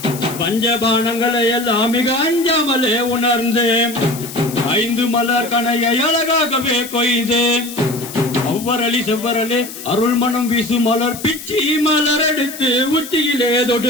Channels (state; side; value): noise; left; hiss, 12 dB below the sound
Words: பஞ்சபானங்களை எல்லாம் மிக அஞ்சாமலே உணர்ந்து 5 மலர் கணையை அழகாகவே கொய்து ஒவ்வொரளி செவ்வரலே அருள் மனம் வீசு மலர் பிச்சி மலர் எடுத்து உச்சியிலே